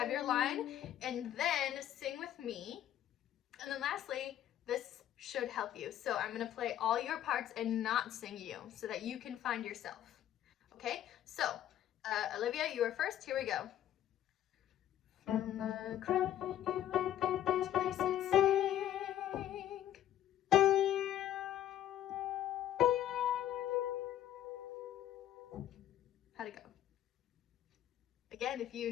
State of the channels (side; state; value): right; quieter; 11.6 dB